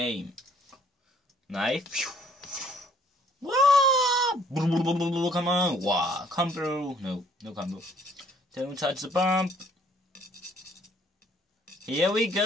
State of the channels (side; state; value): both; normal; correlation 0.61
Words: Knife. Wow! Come on. Wow. Combo. No combo. Don't touch the bump. Here we